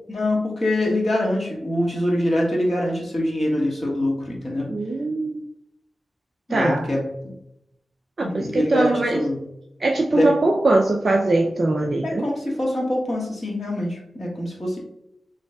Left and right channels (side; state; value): both; normal; correlation 0.93